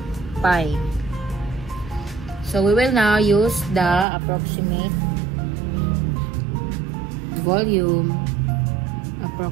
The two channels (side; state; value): left; drops out; at 4.0 s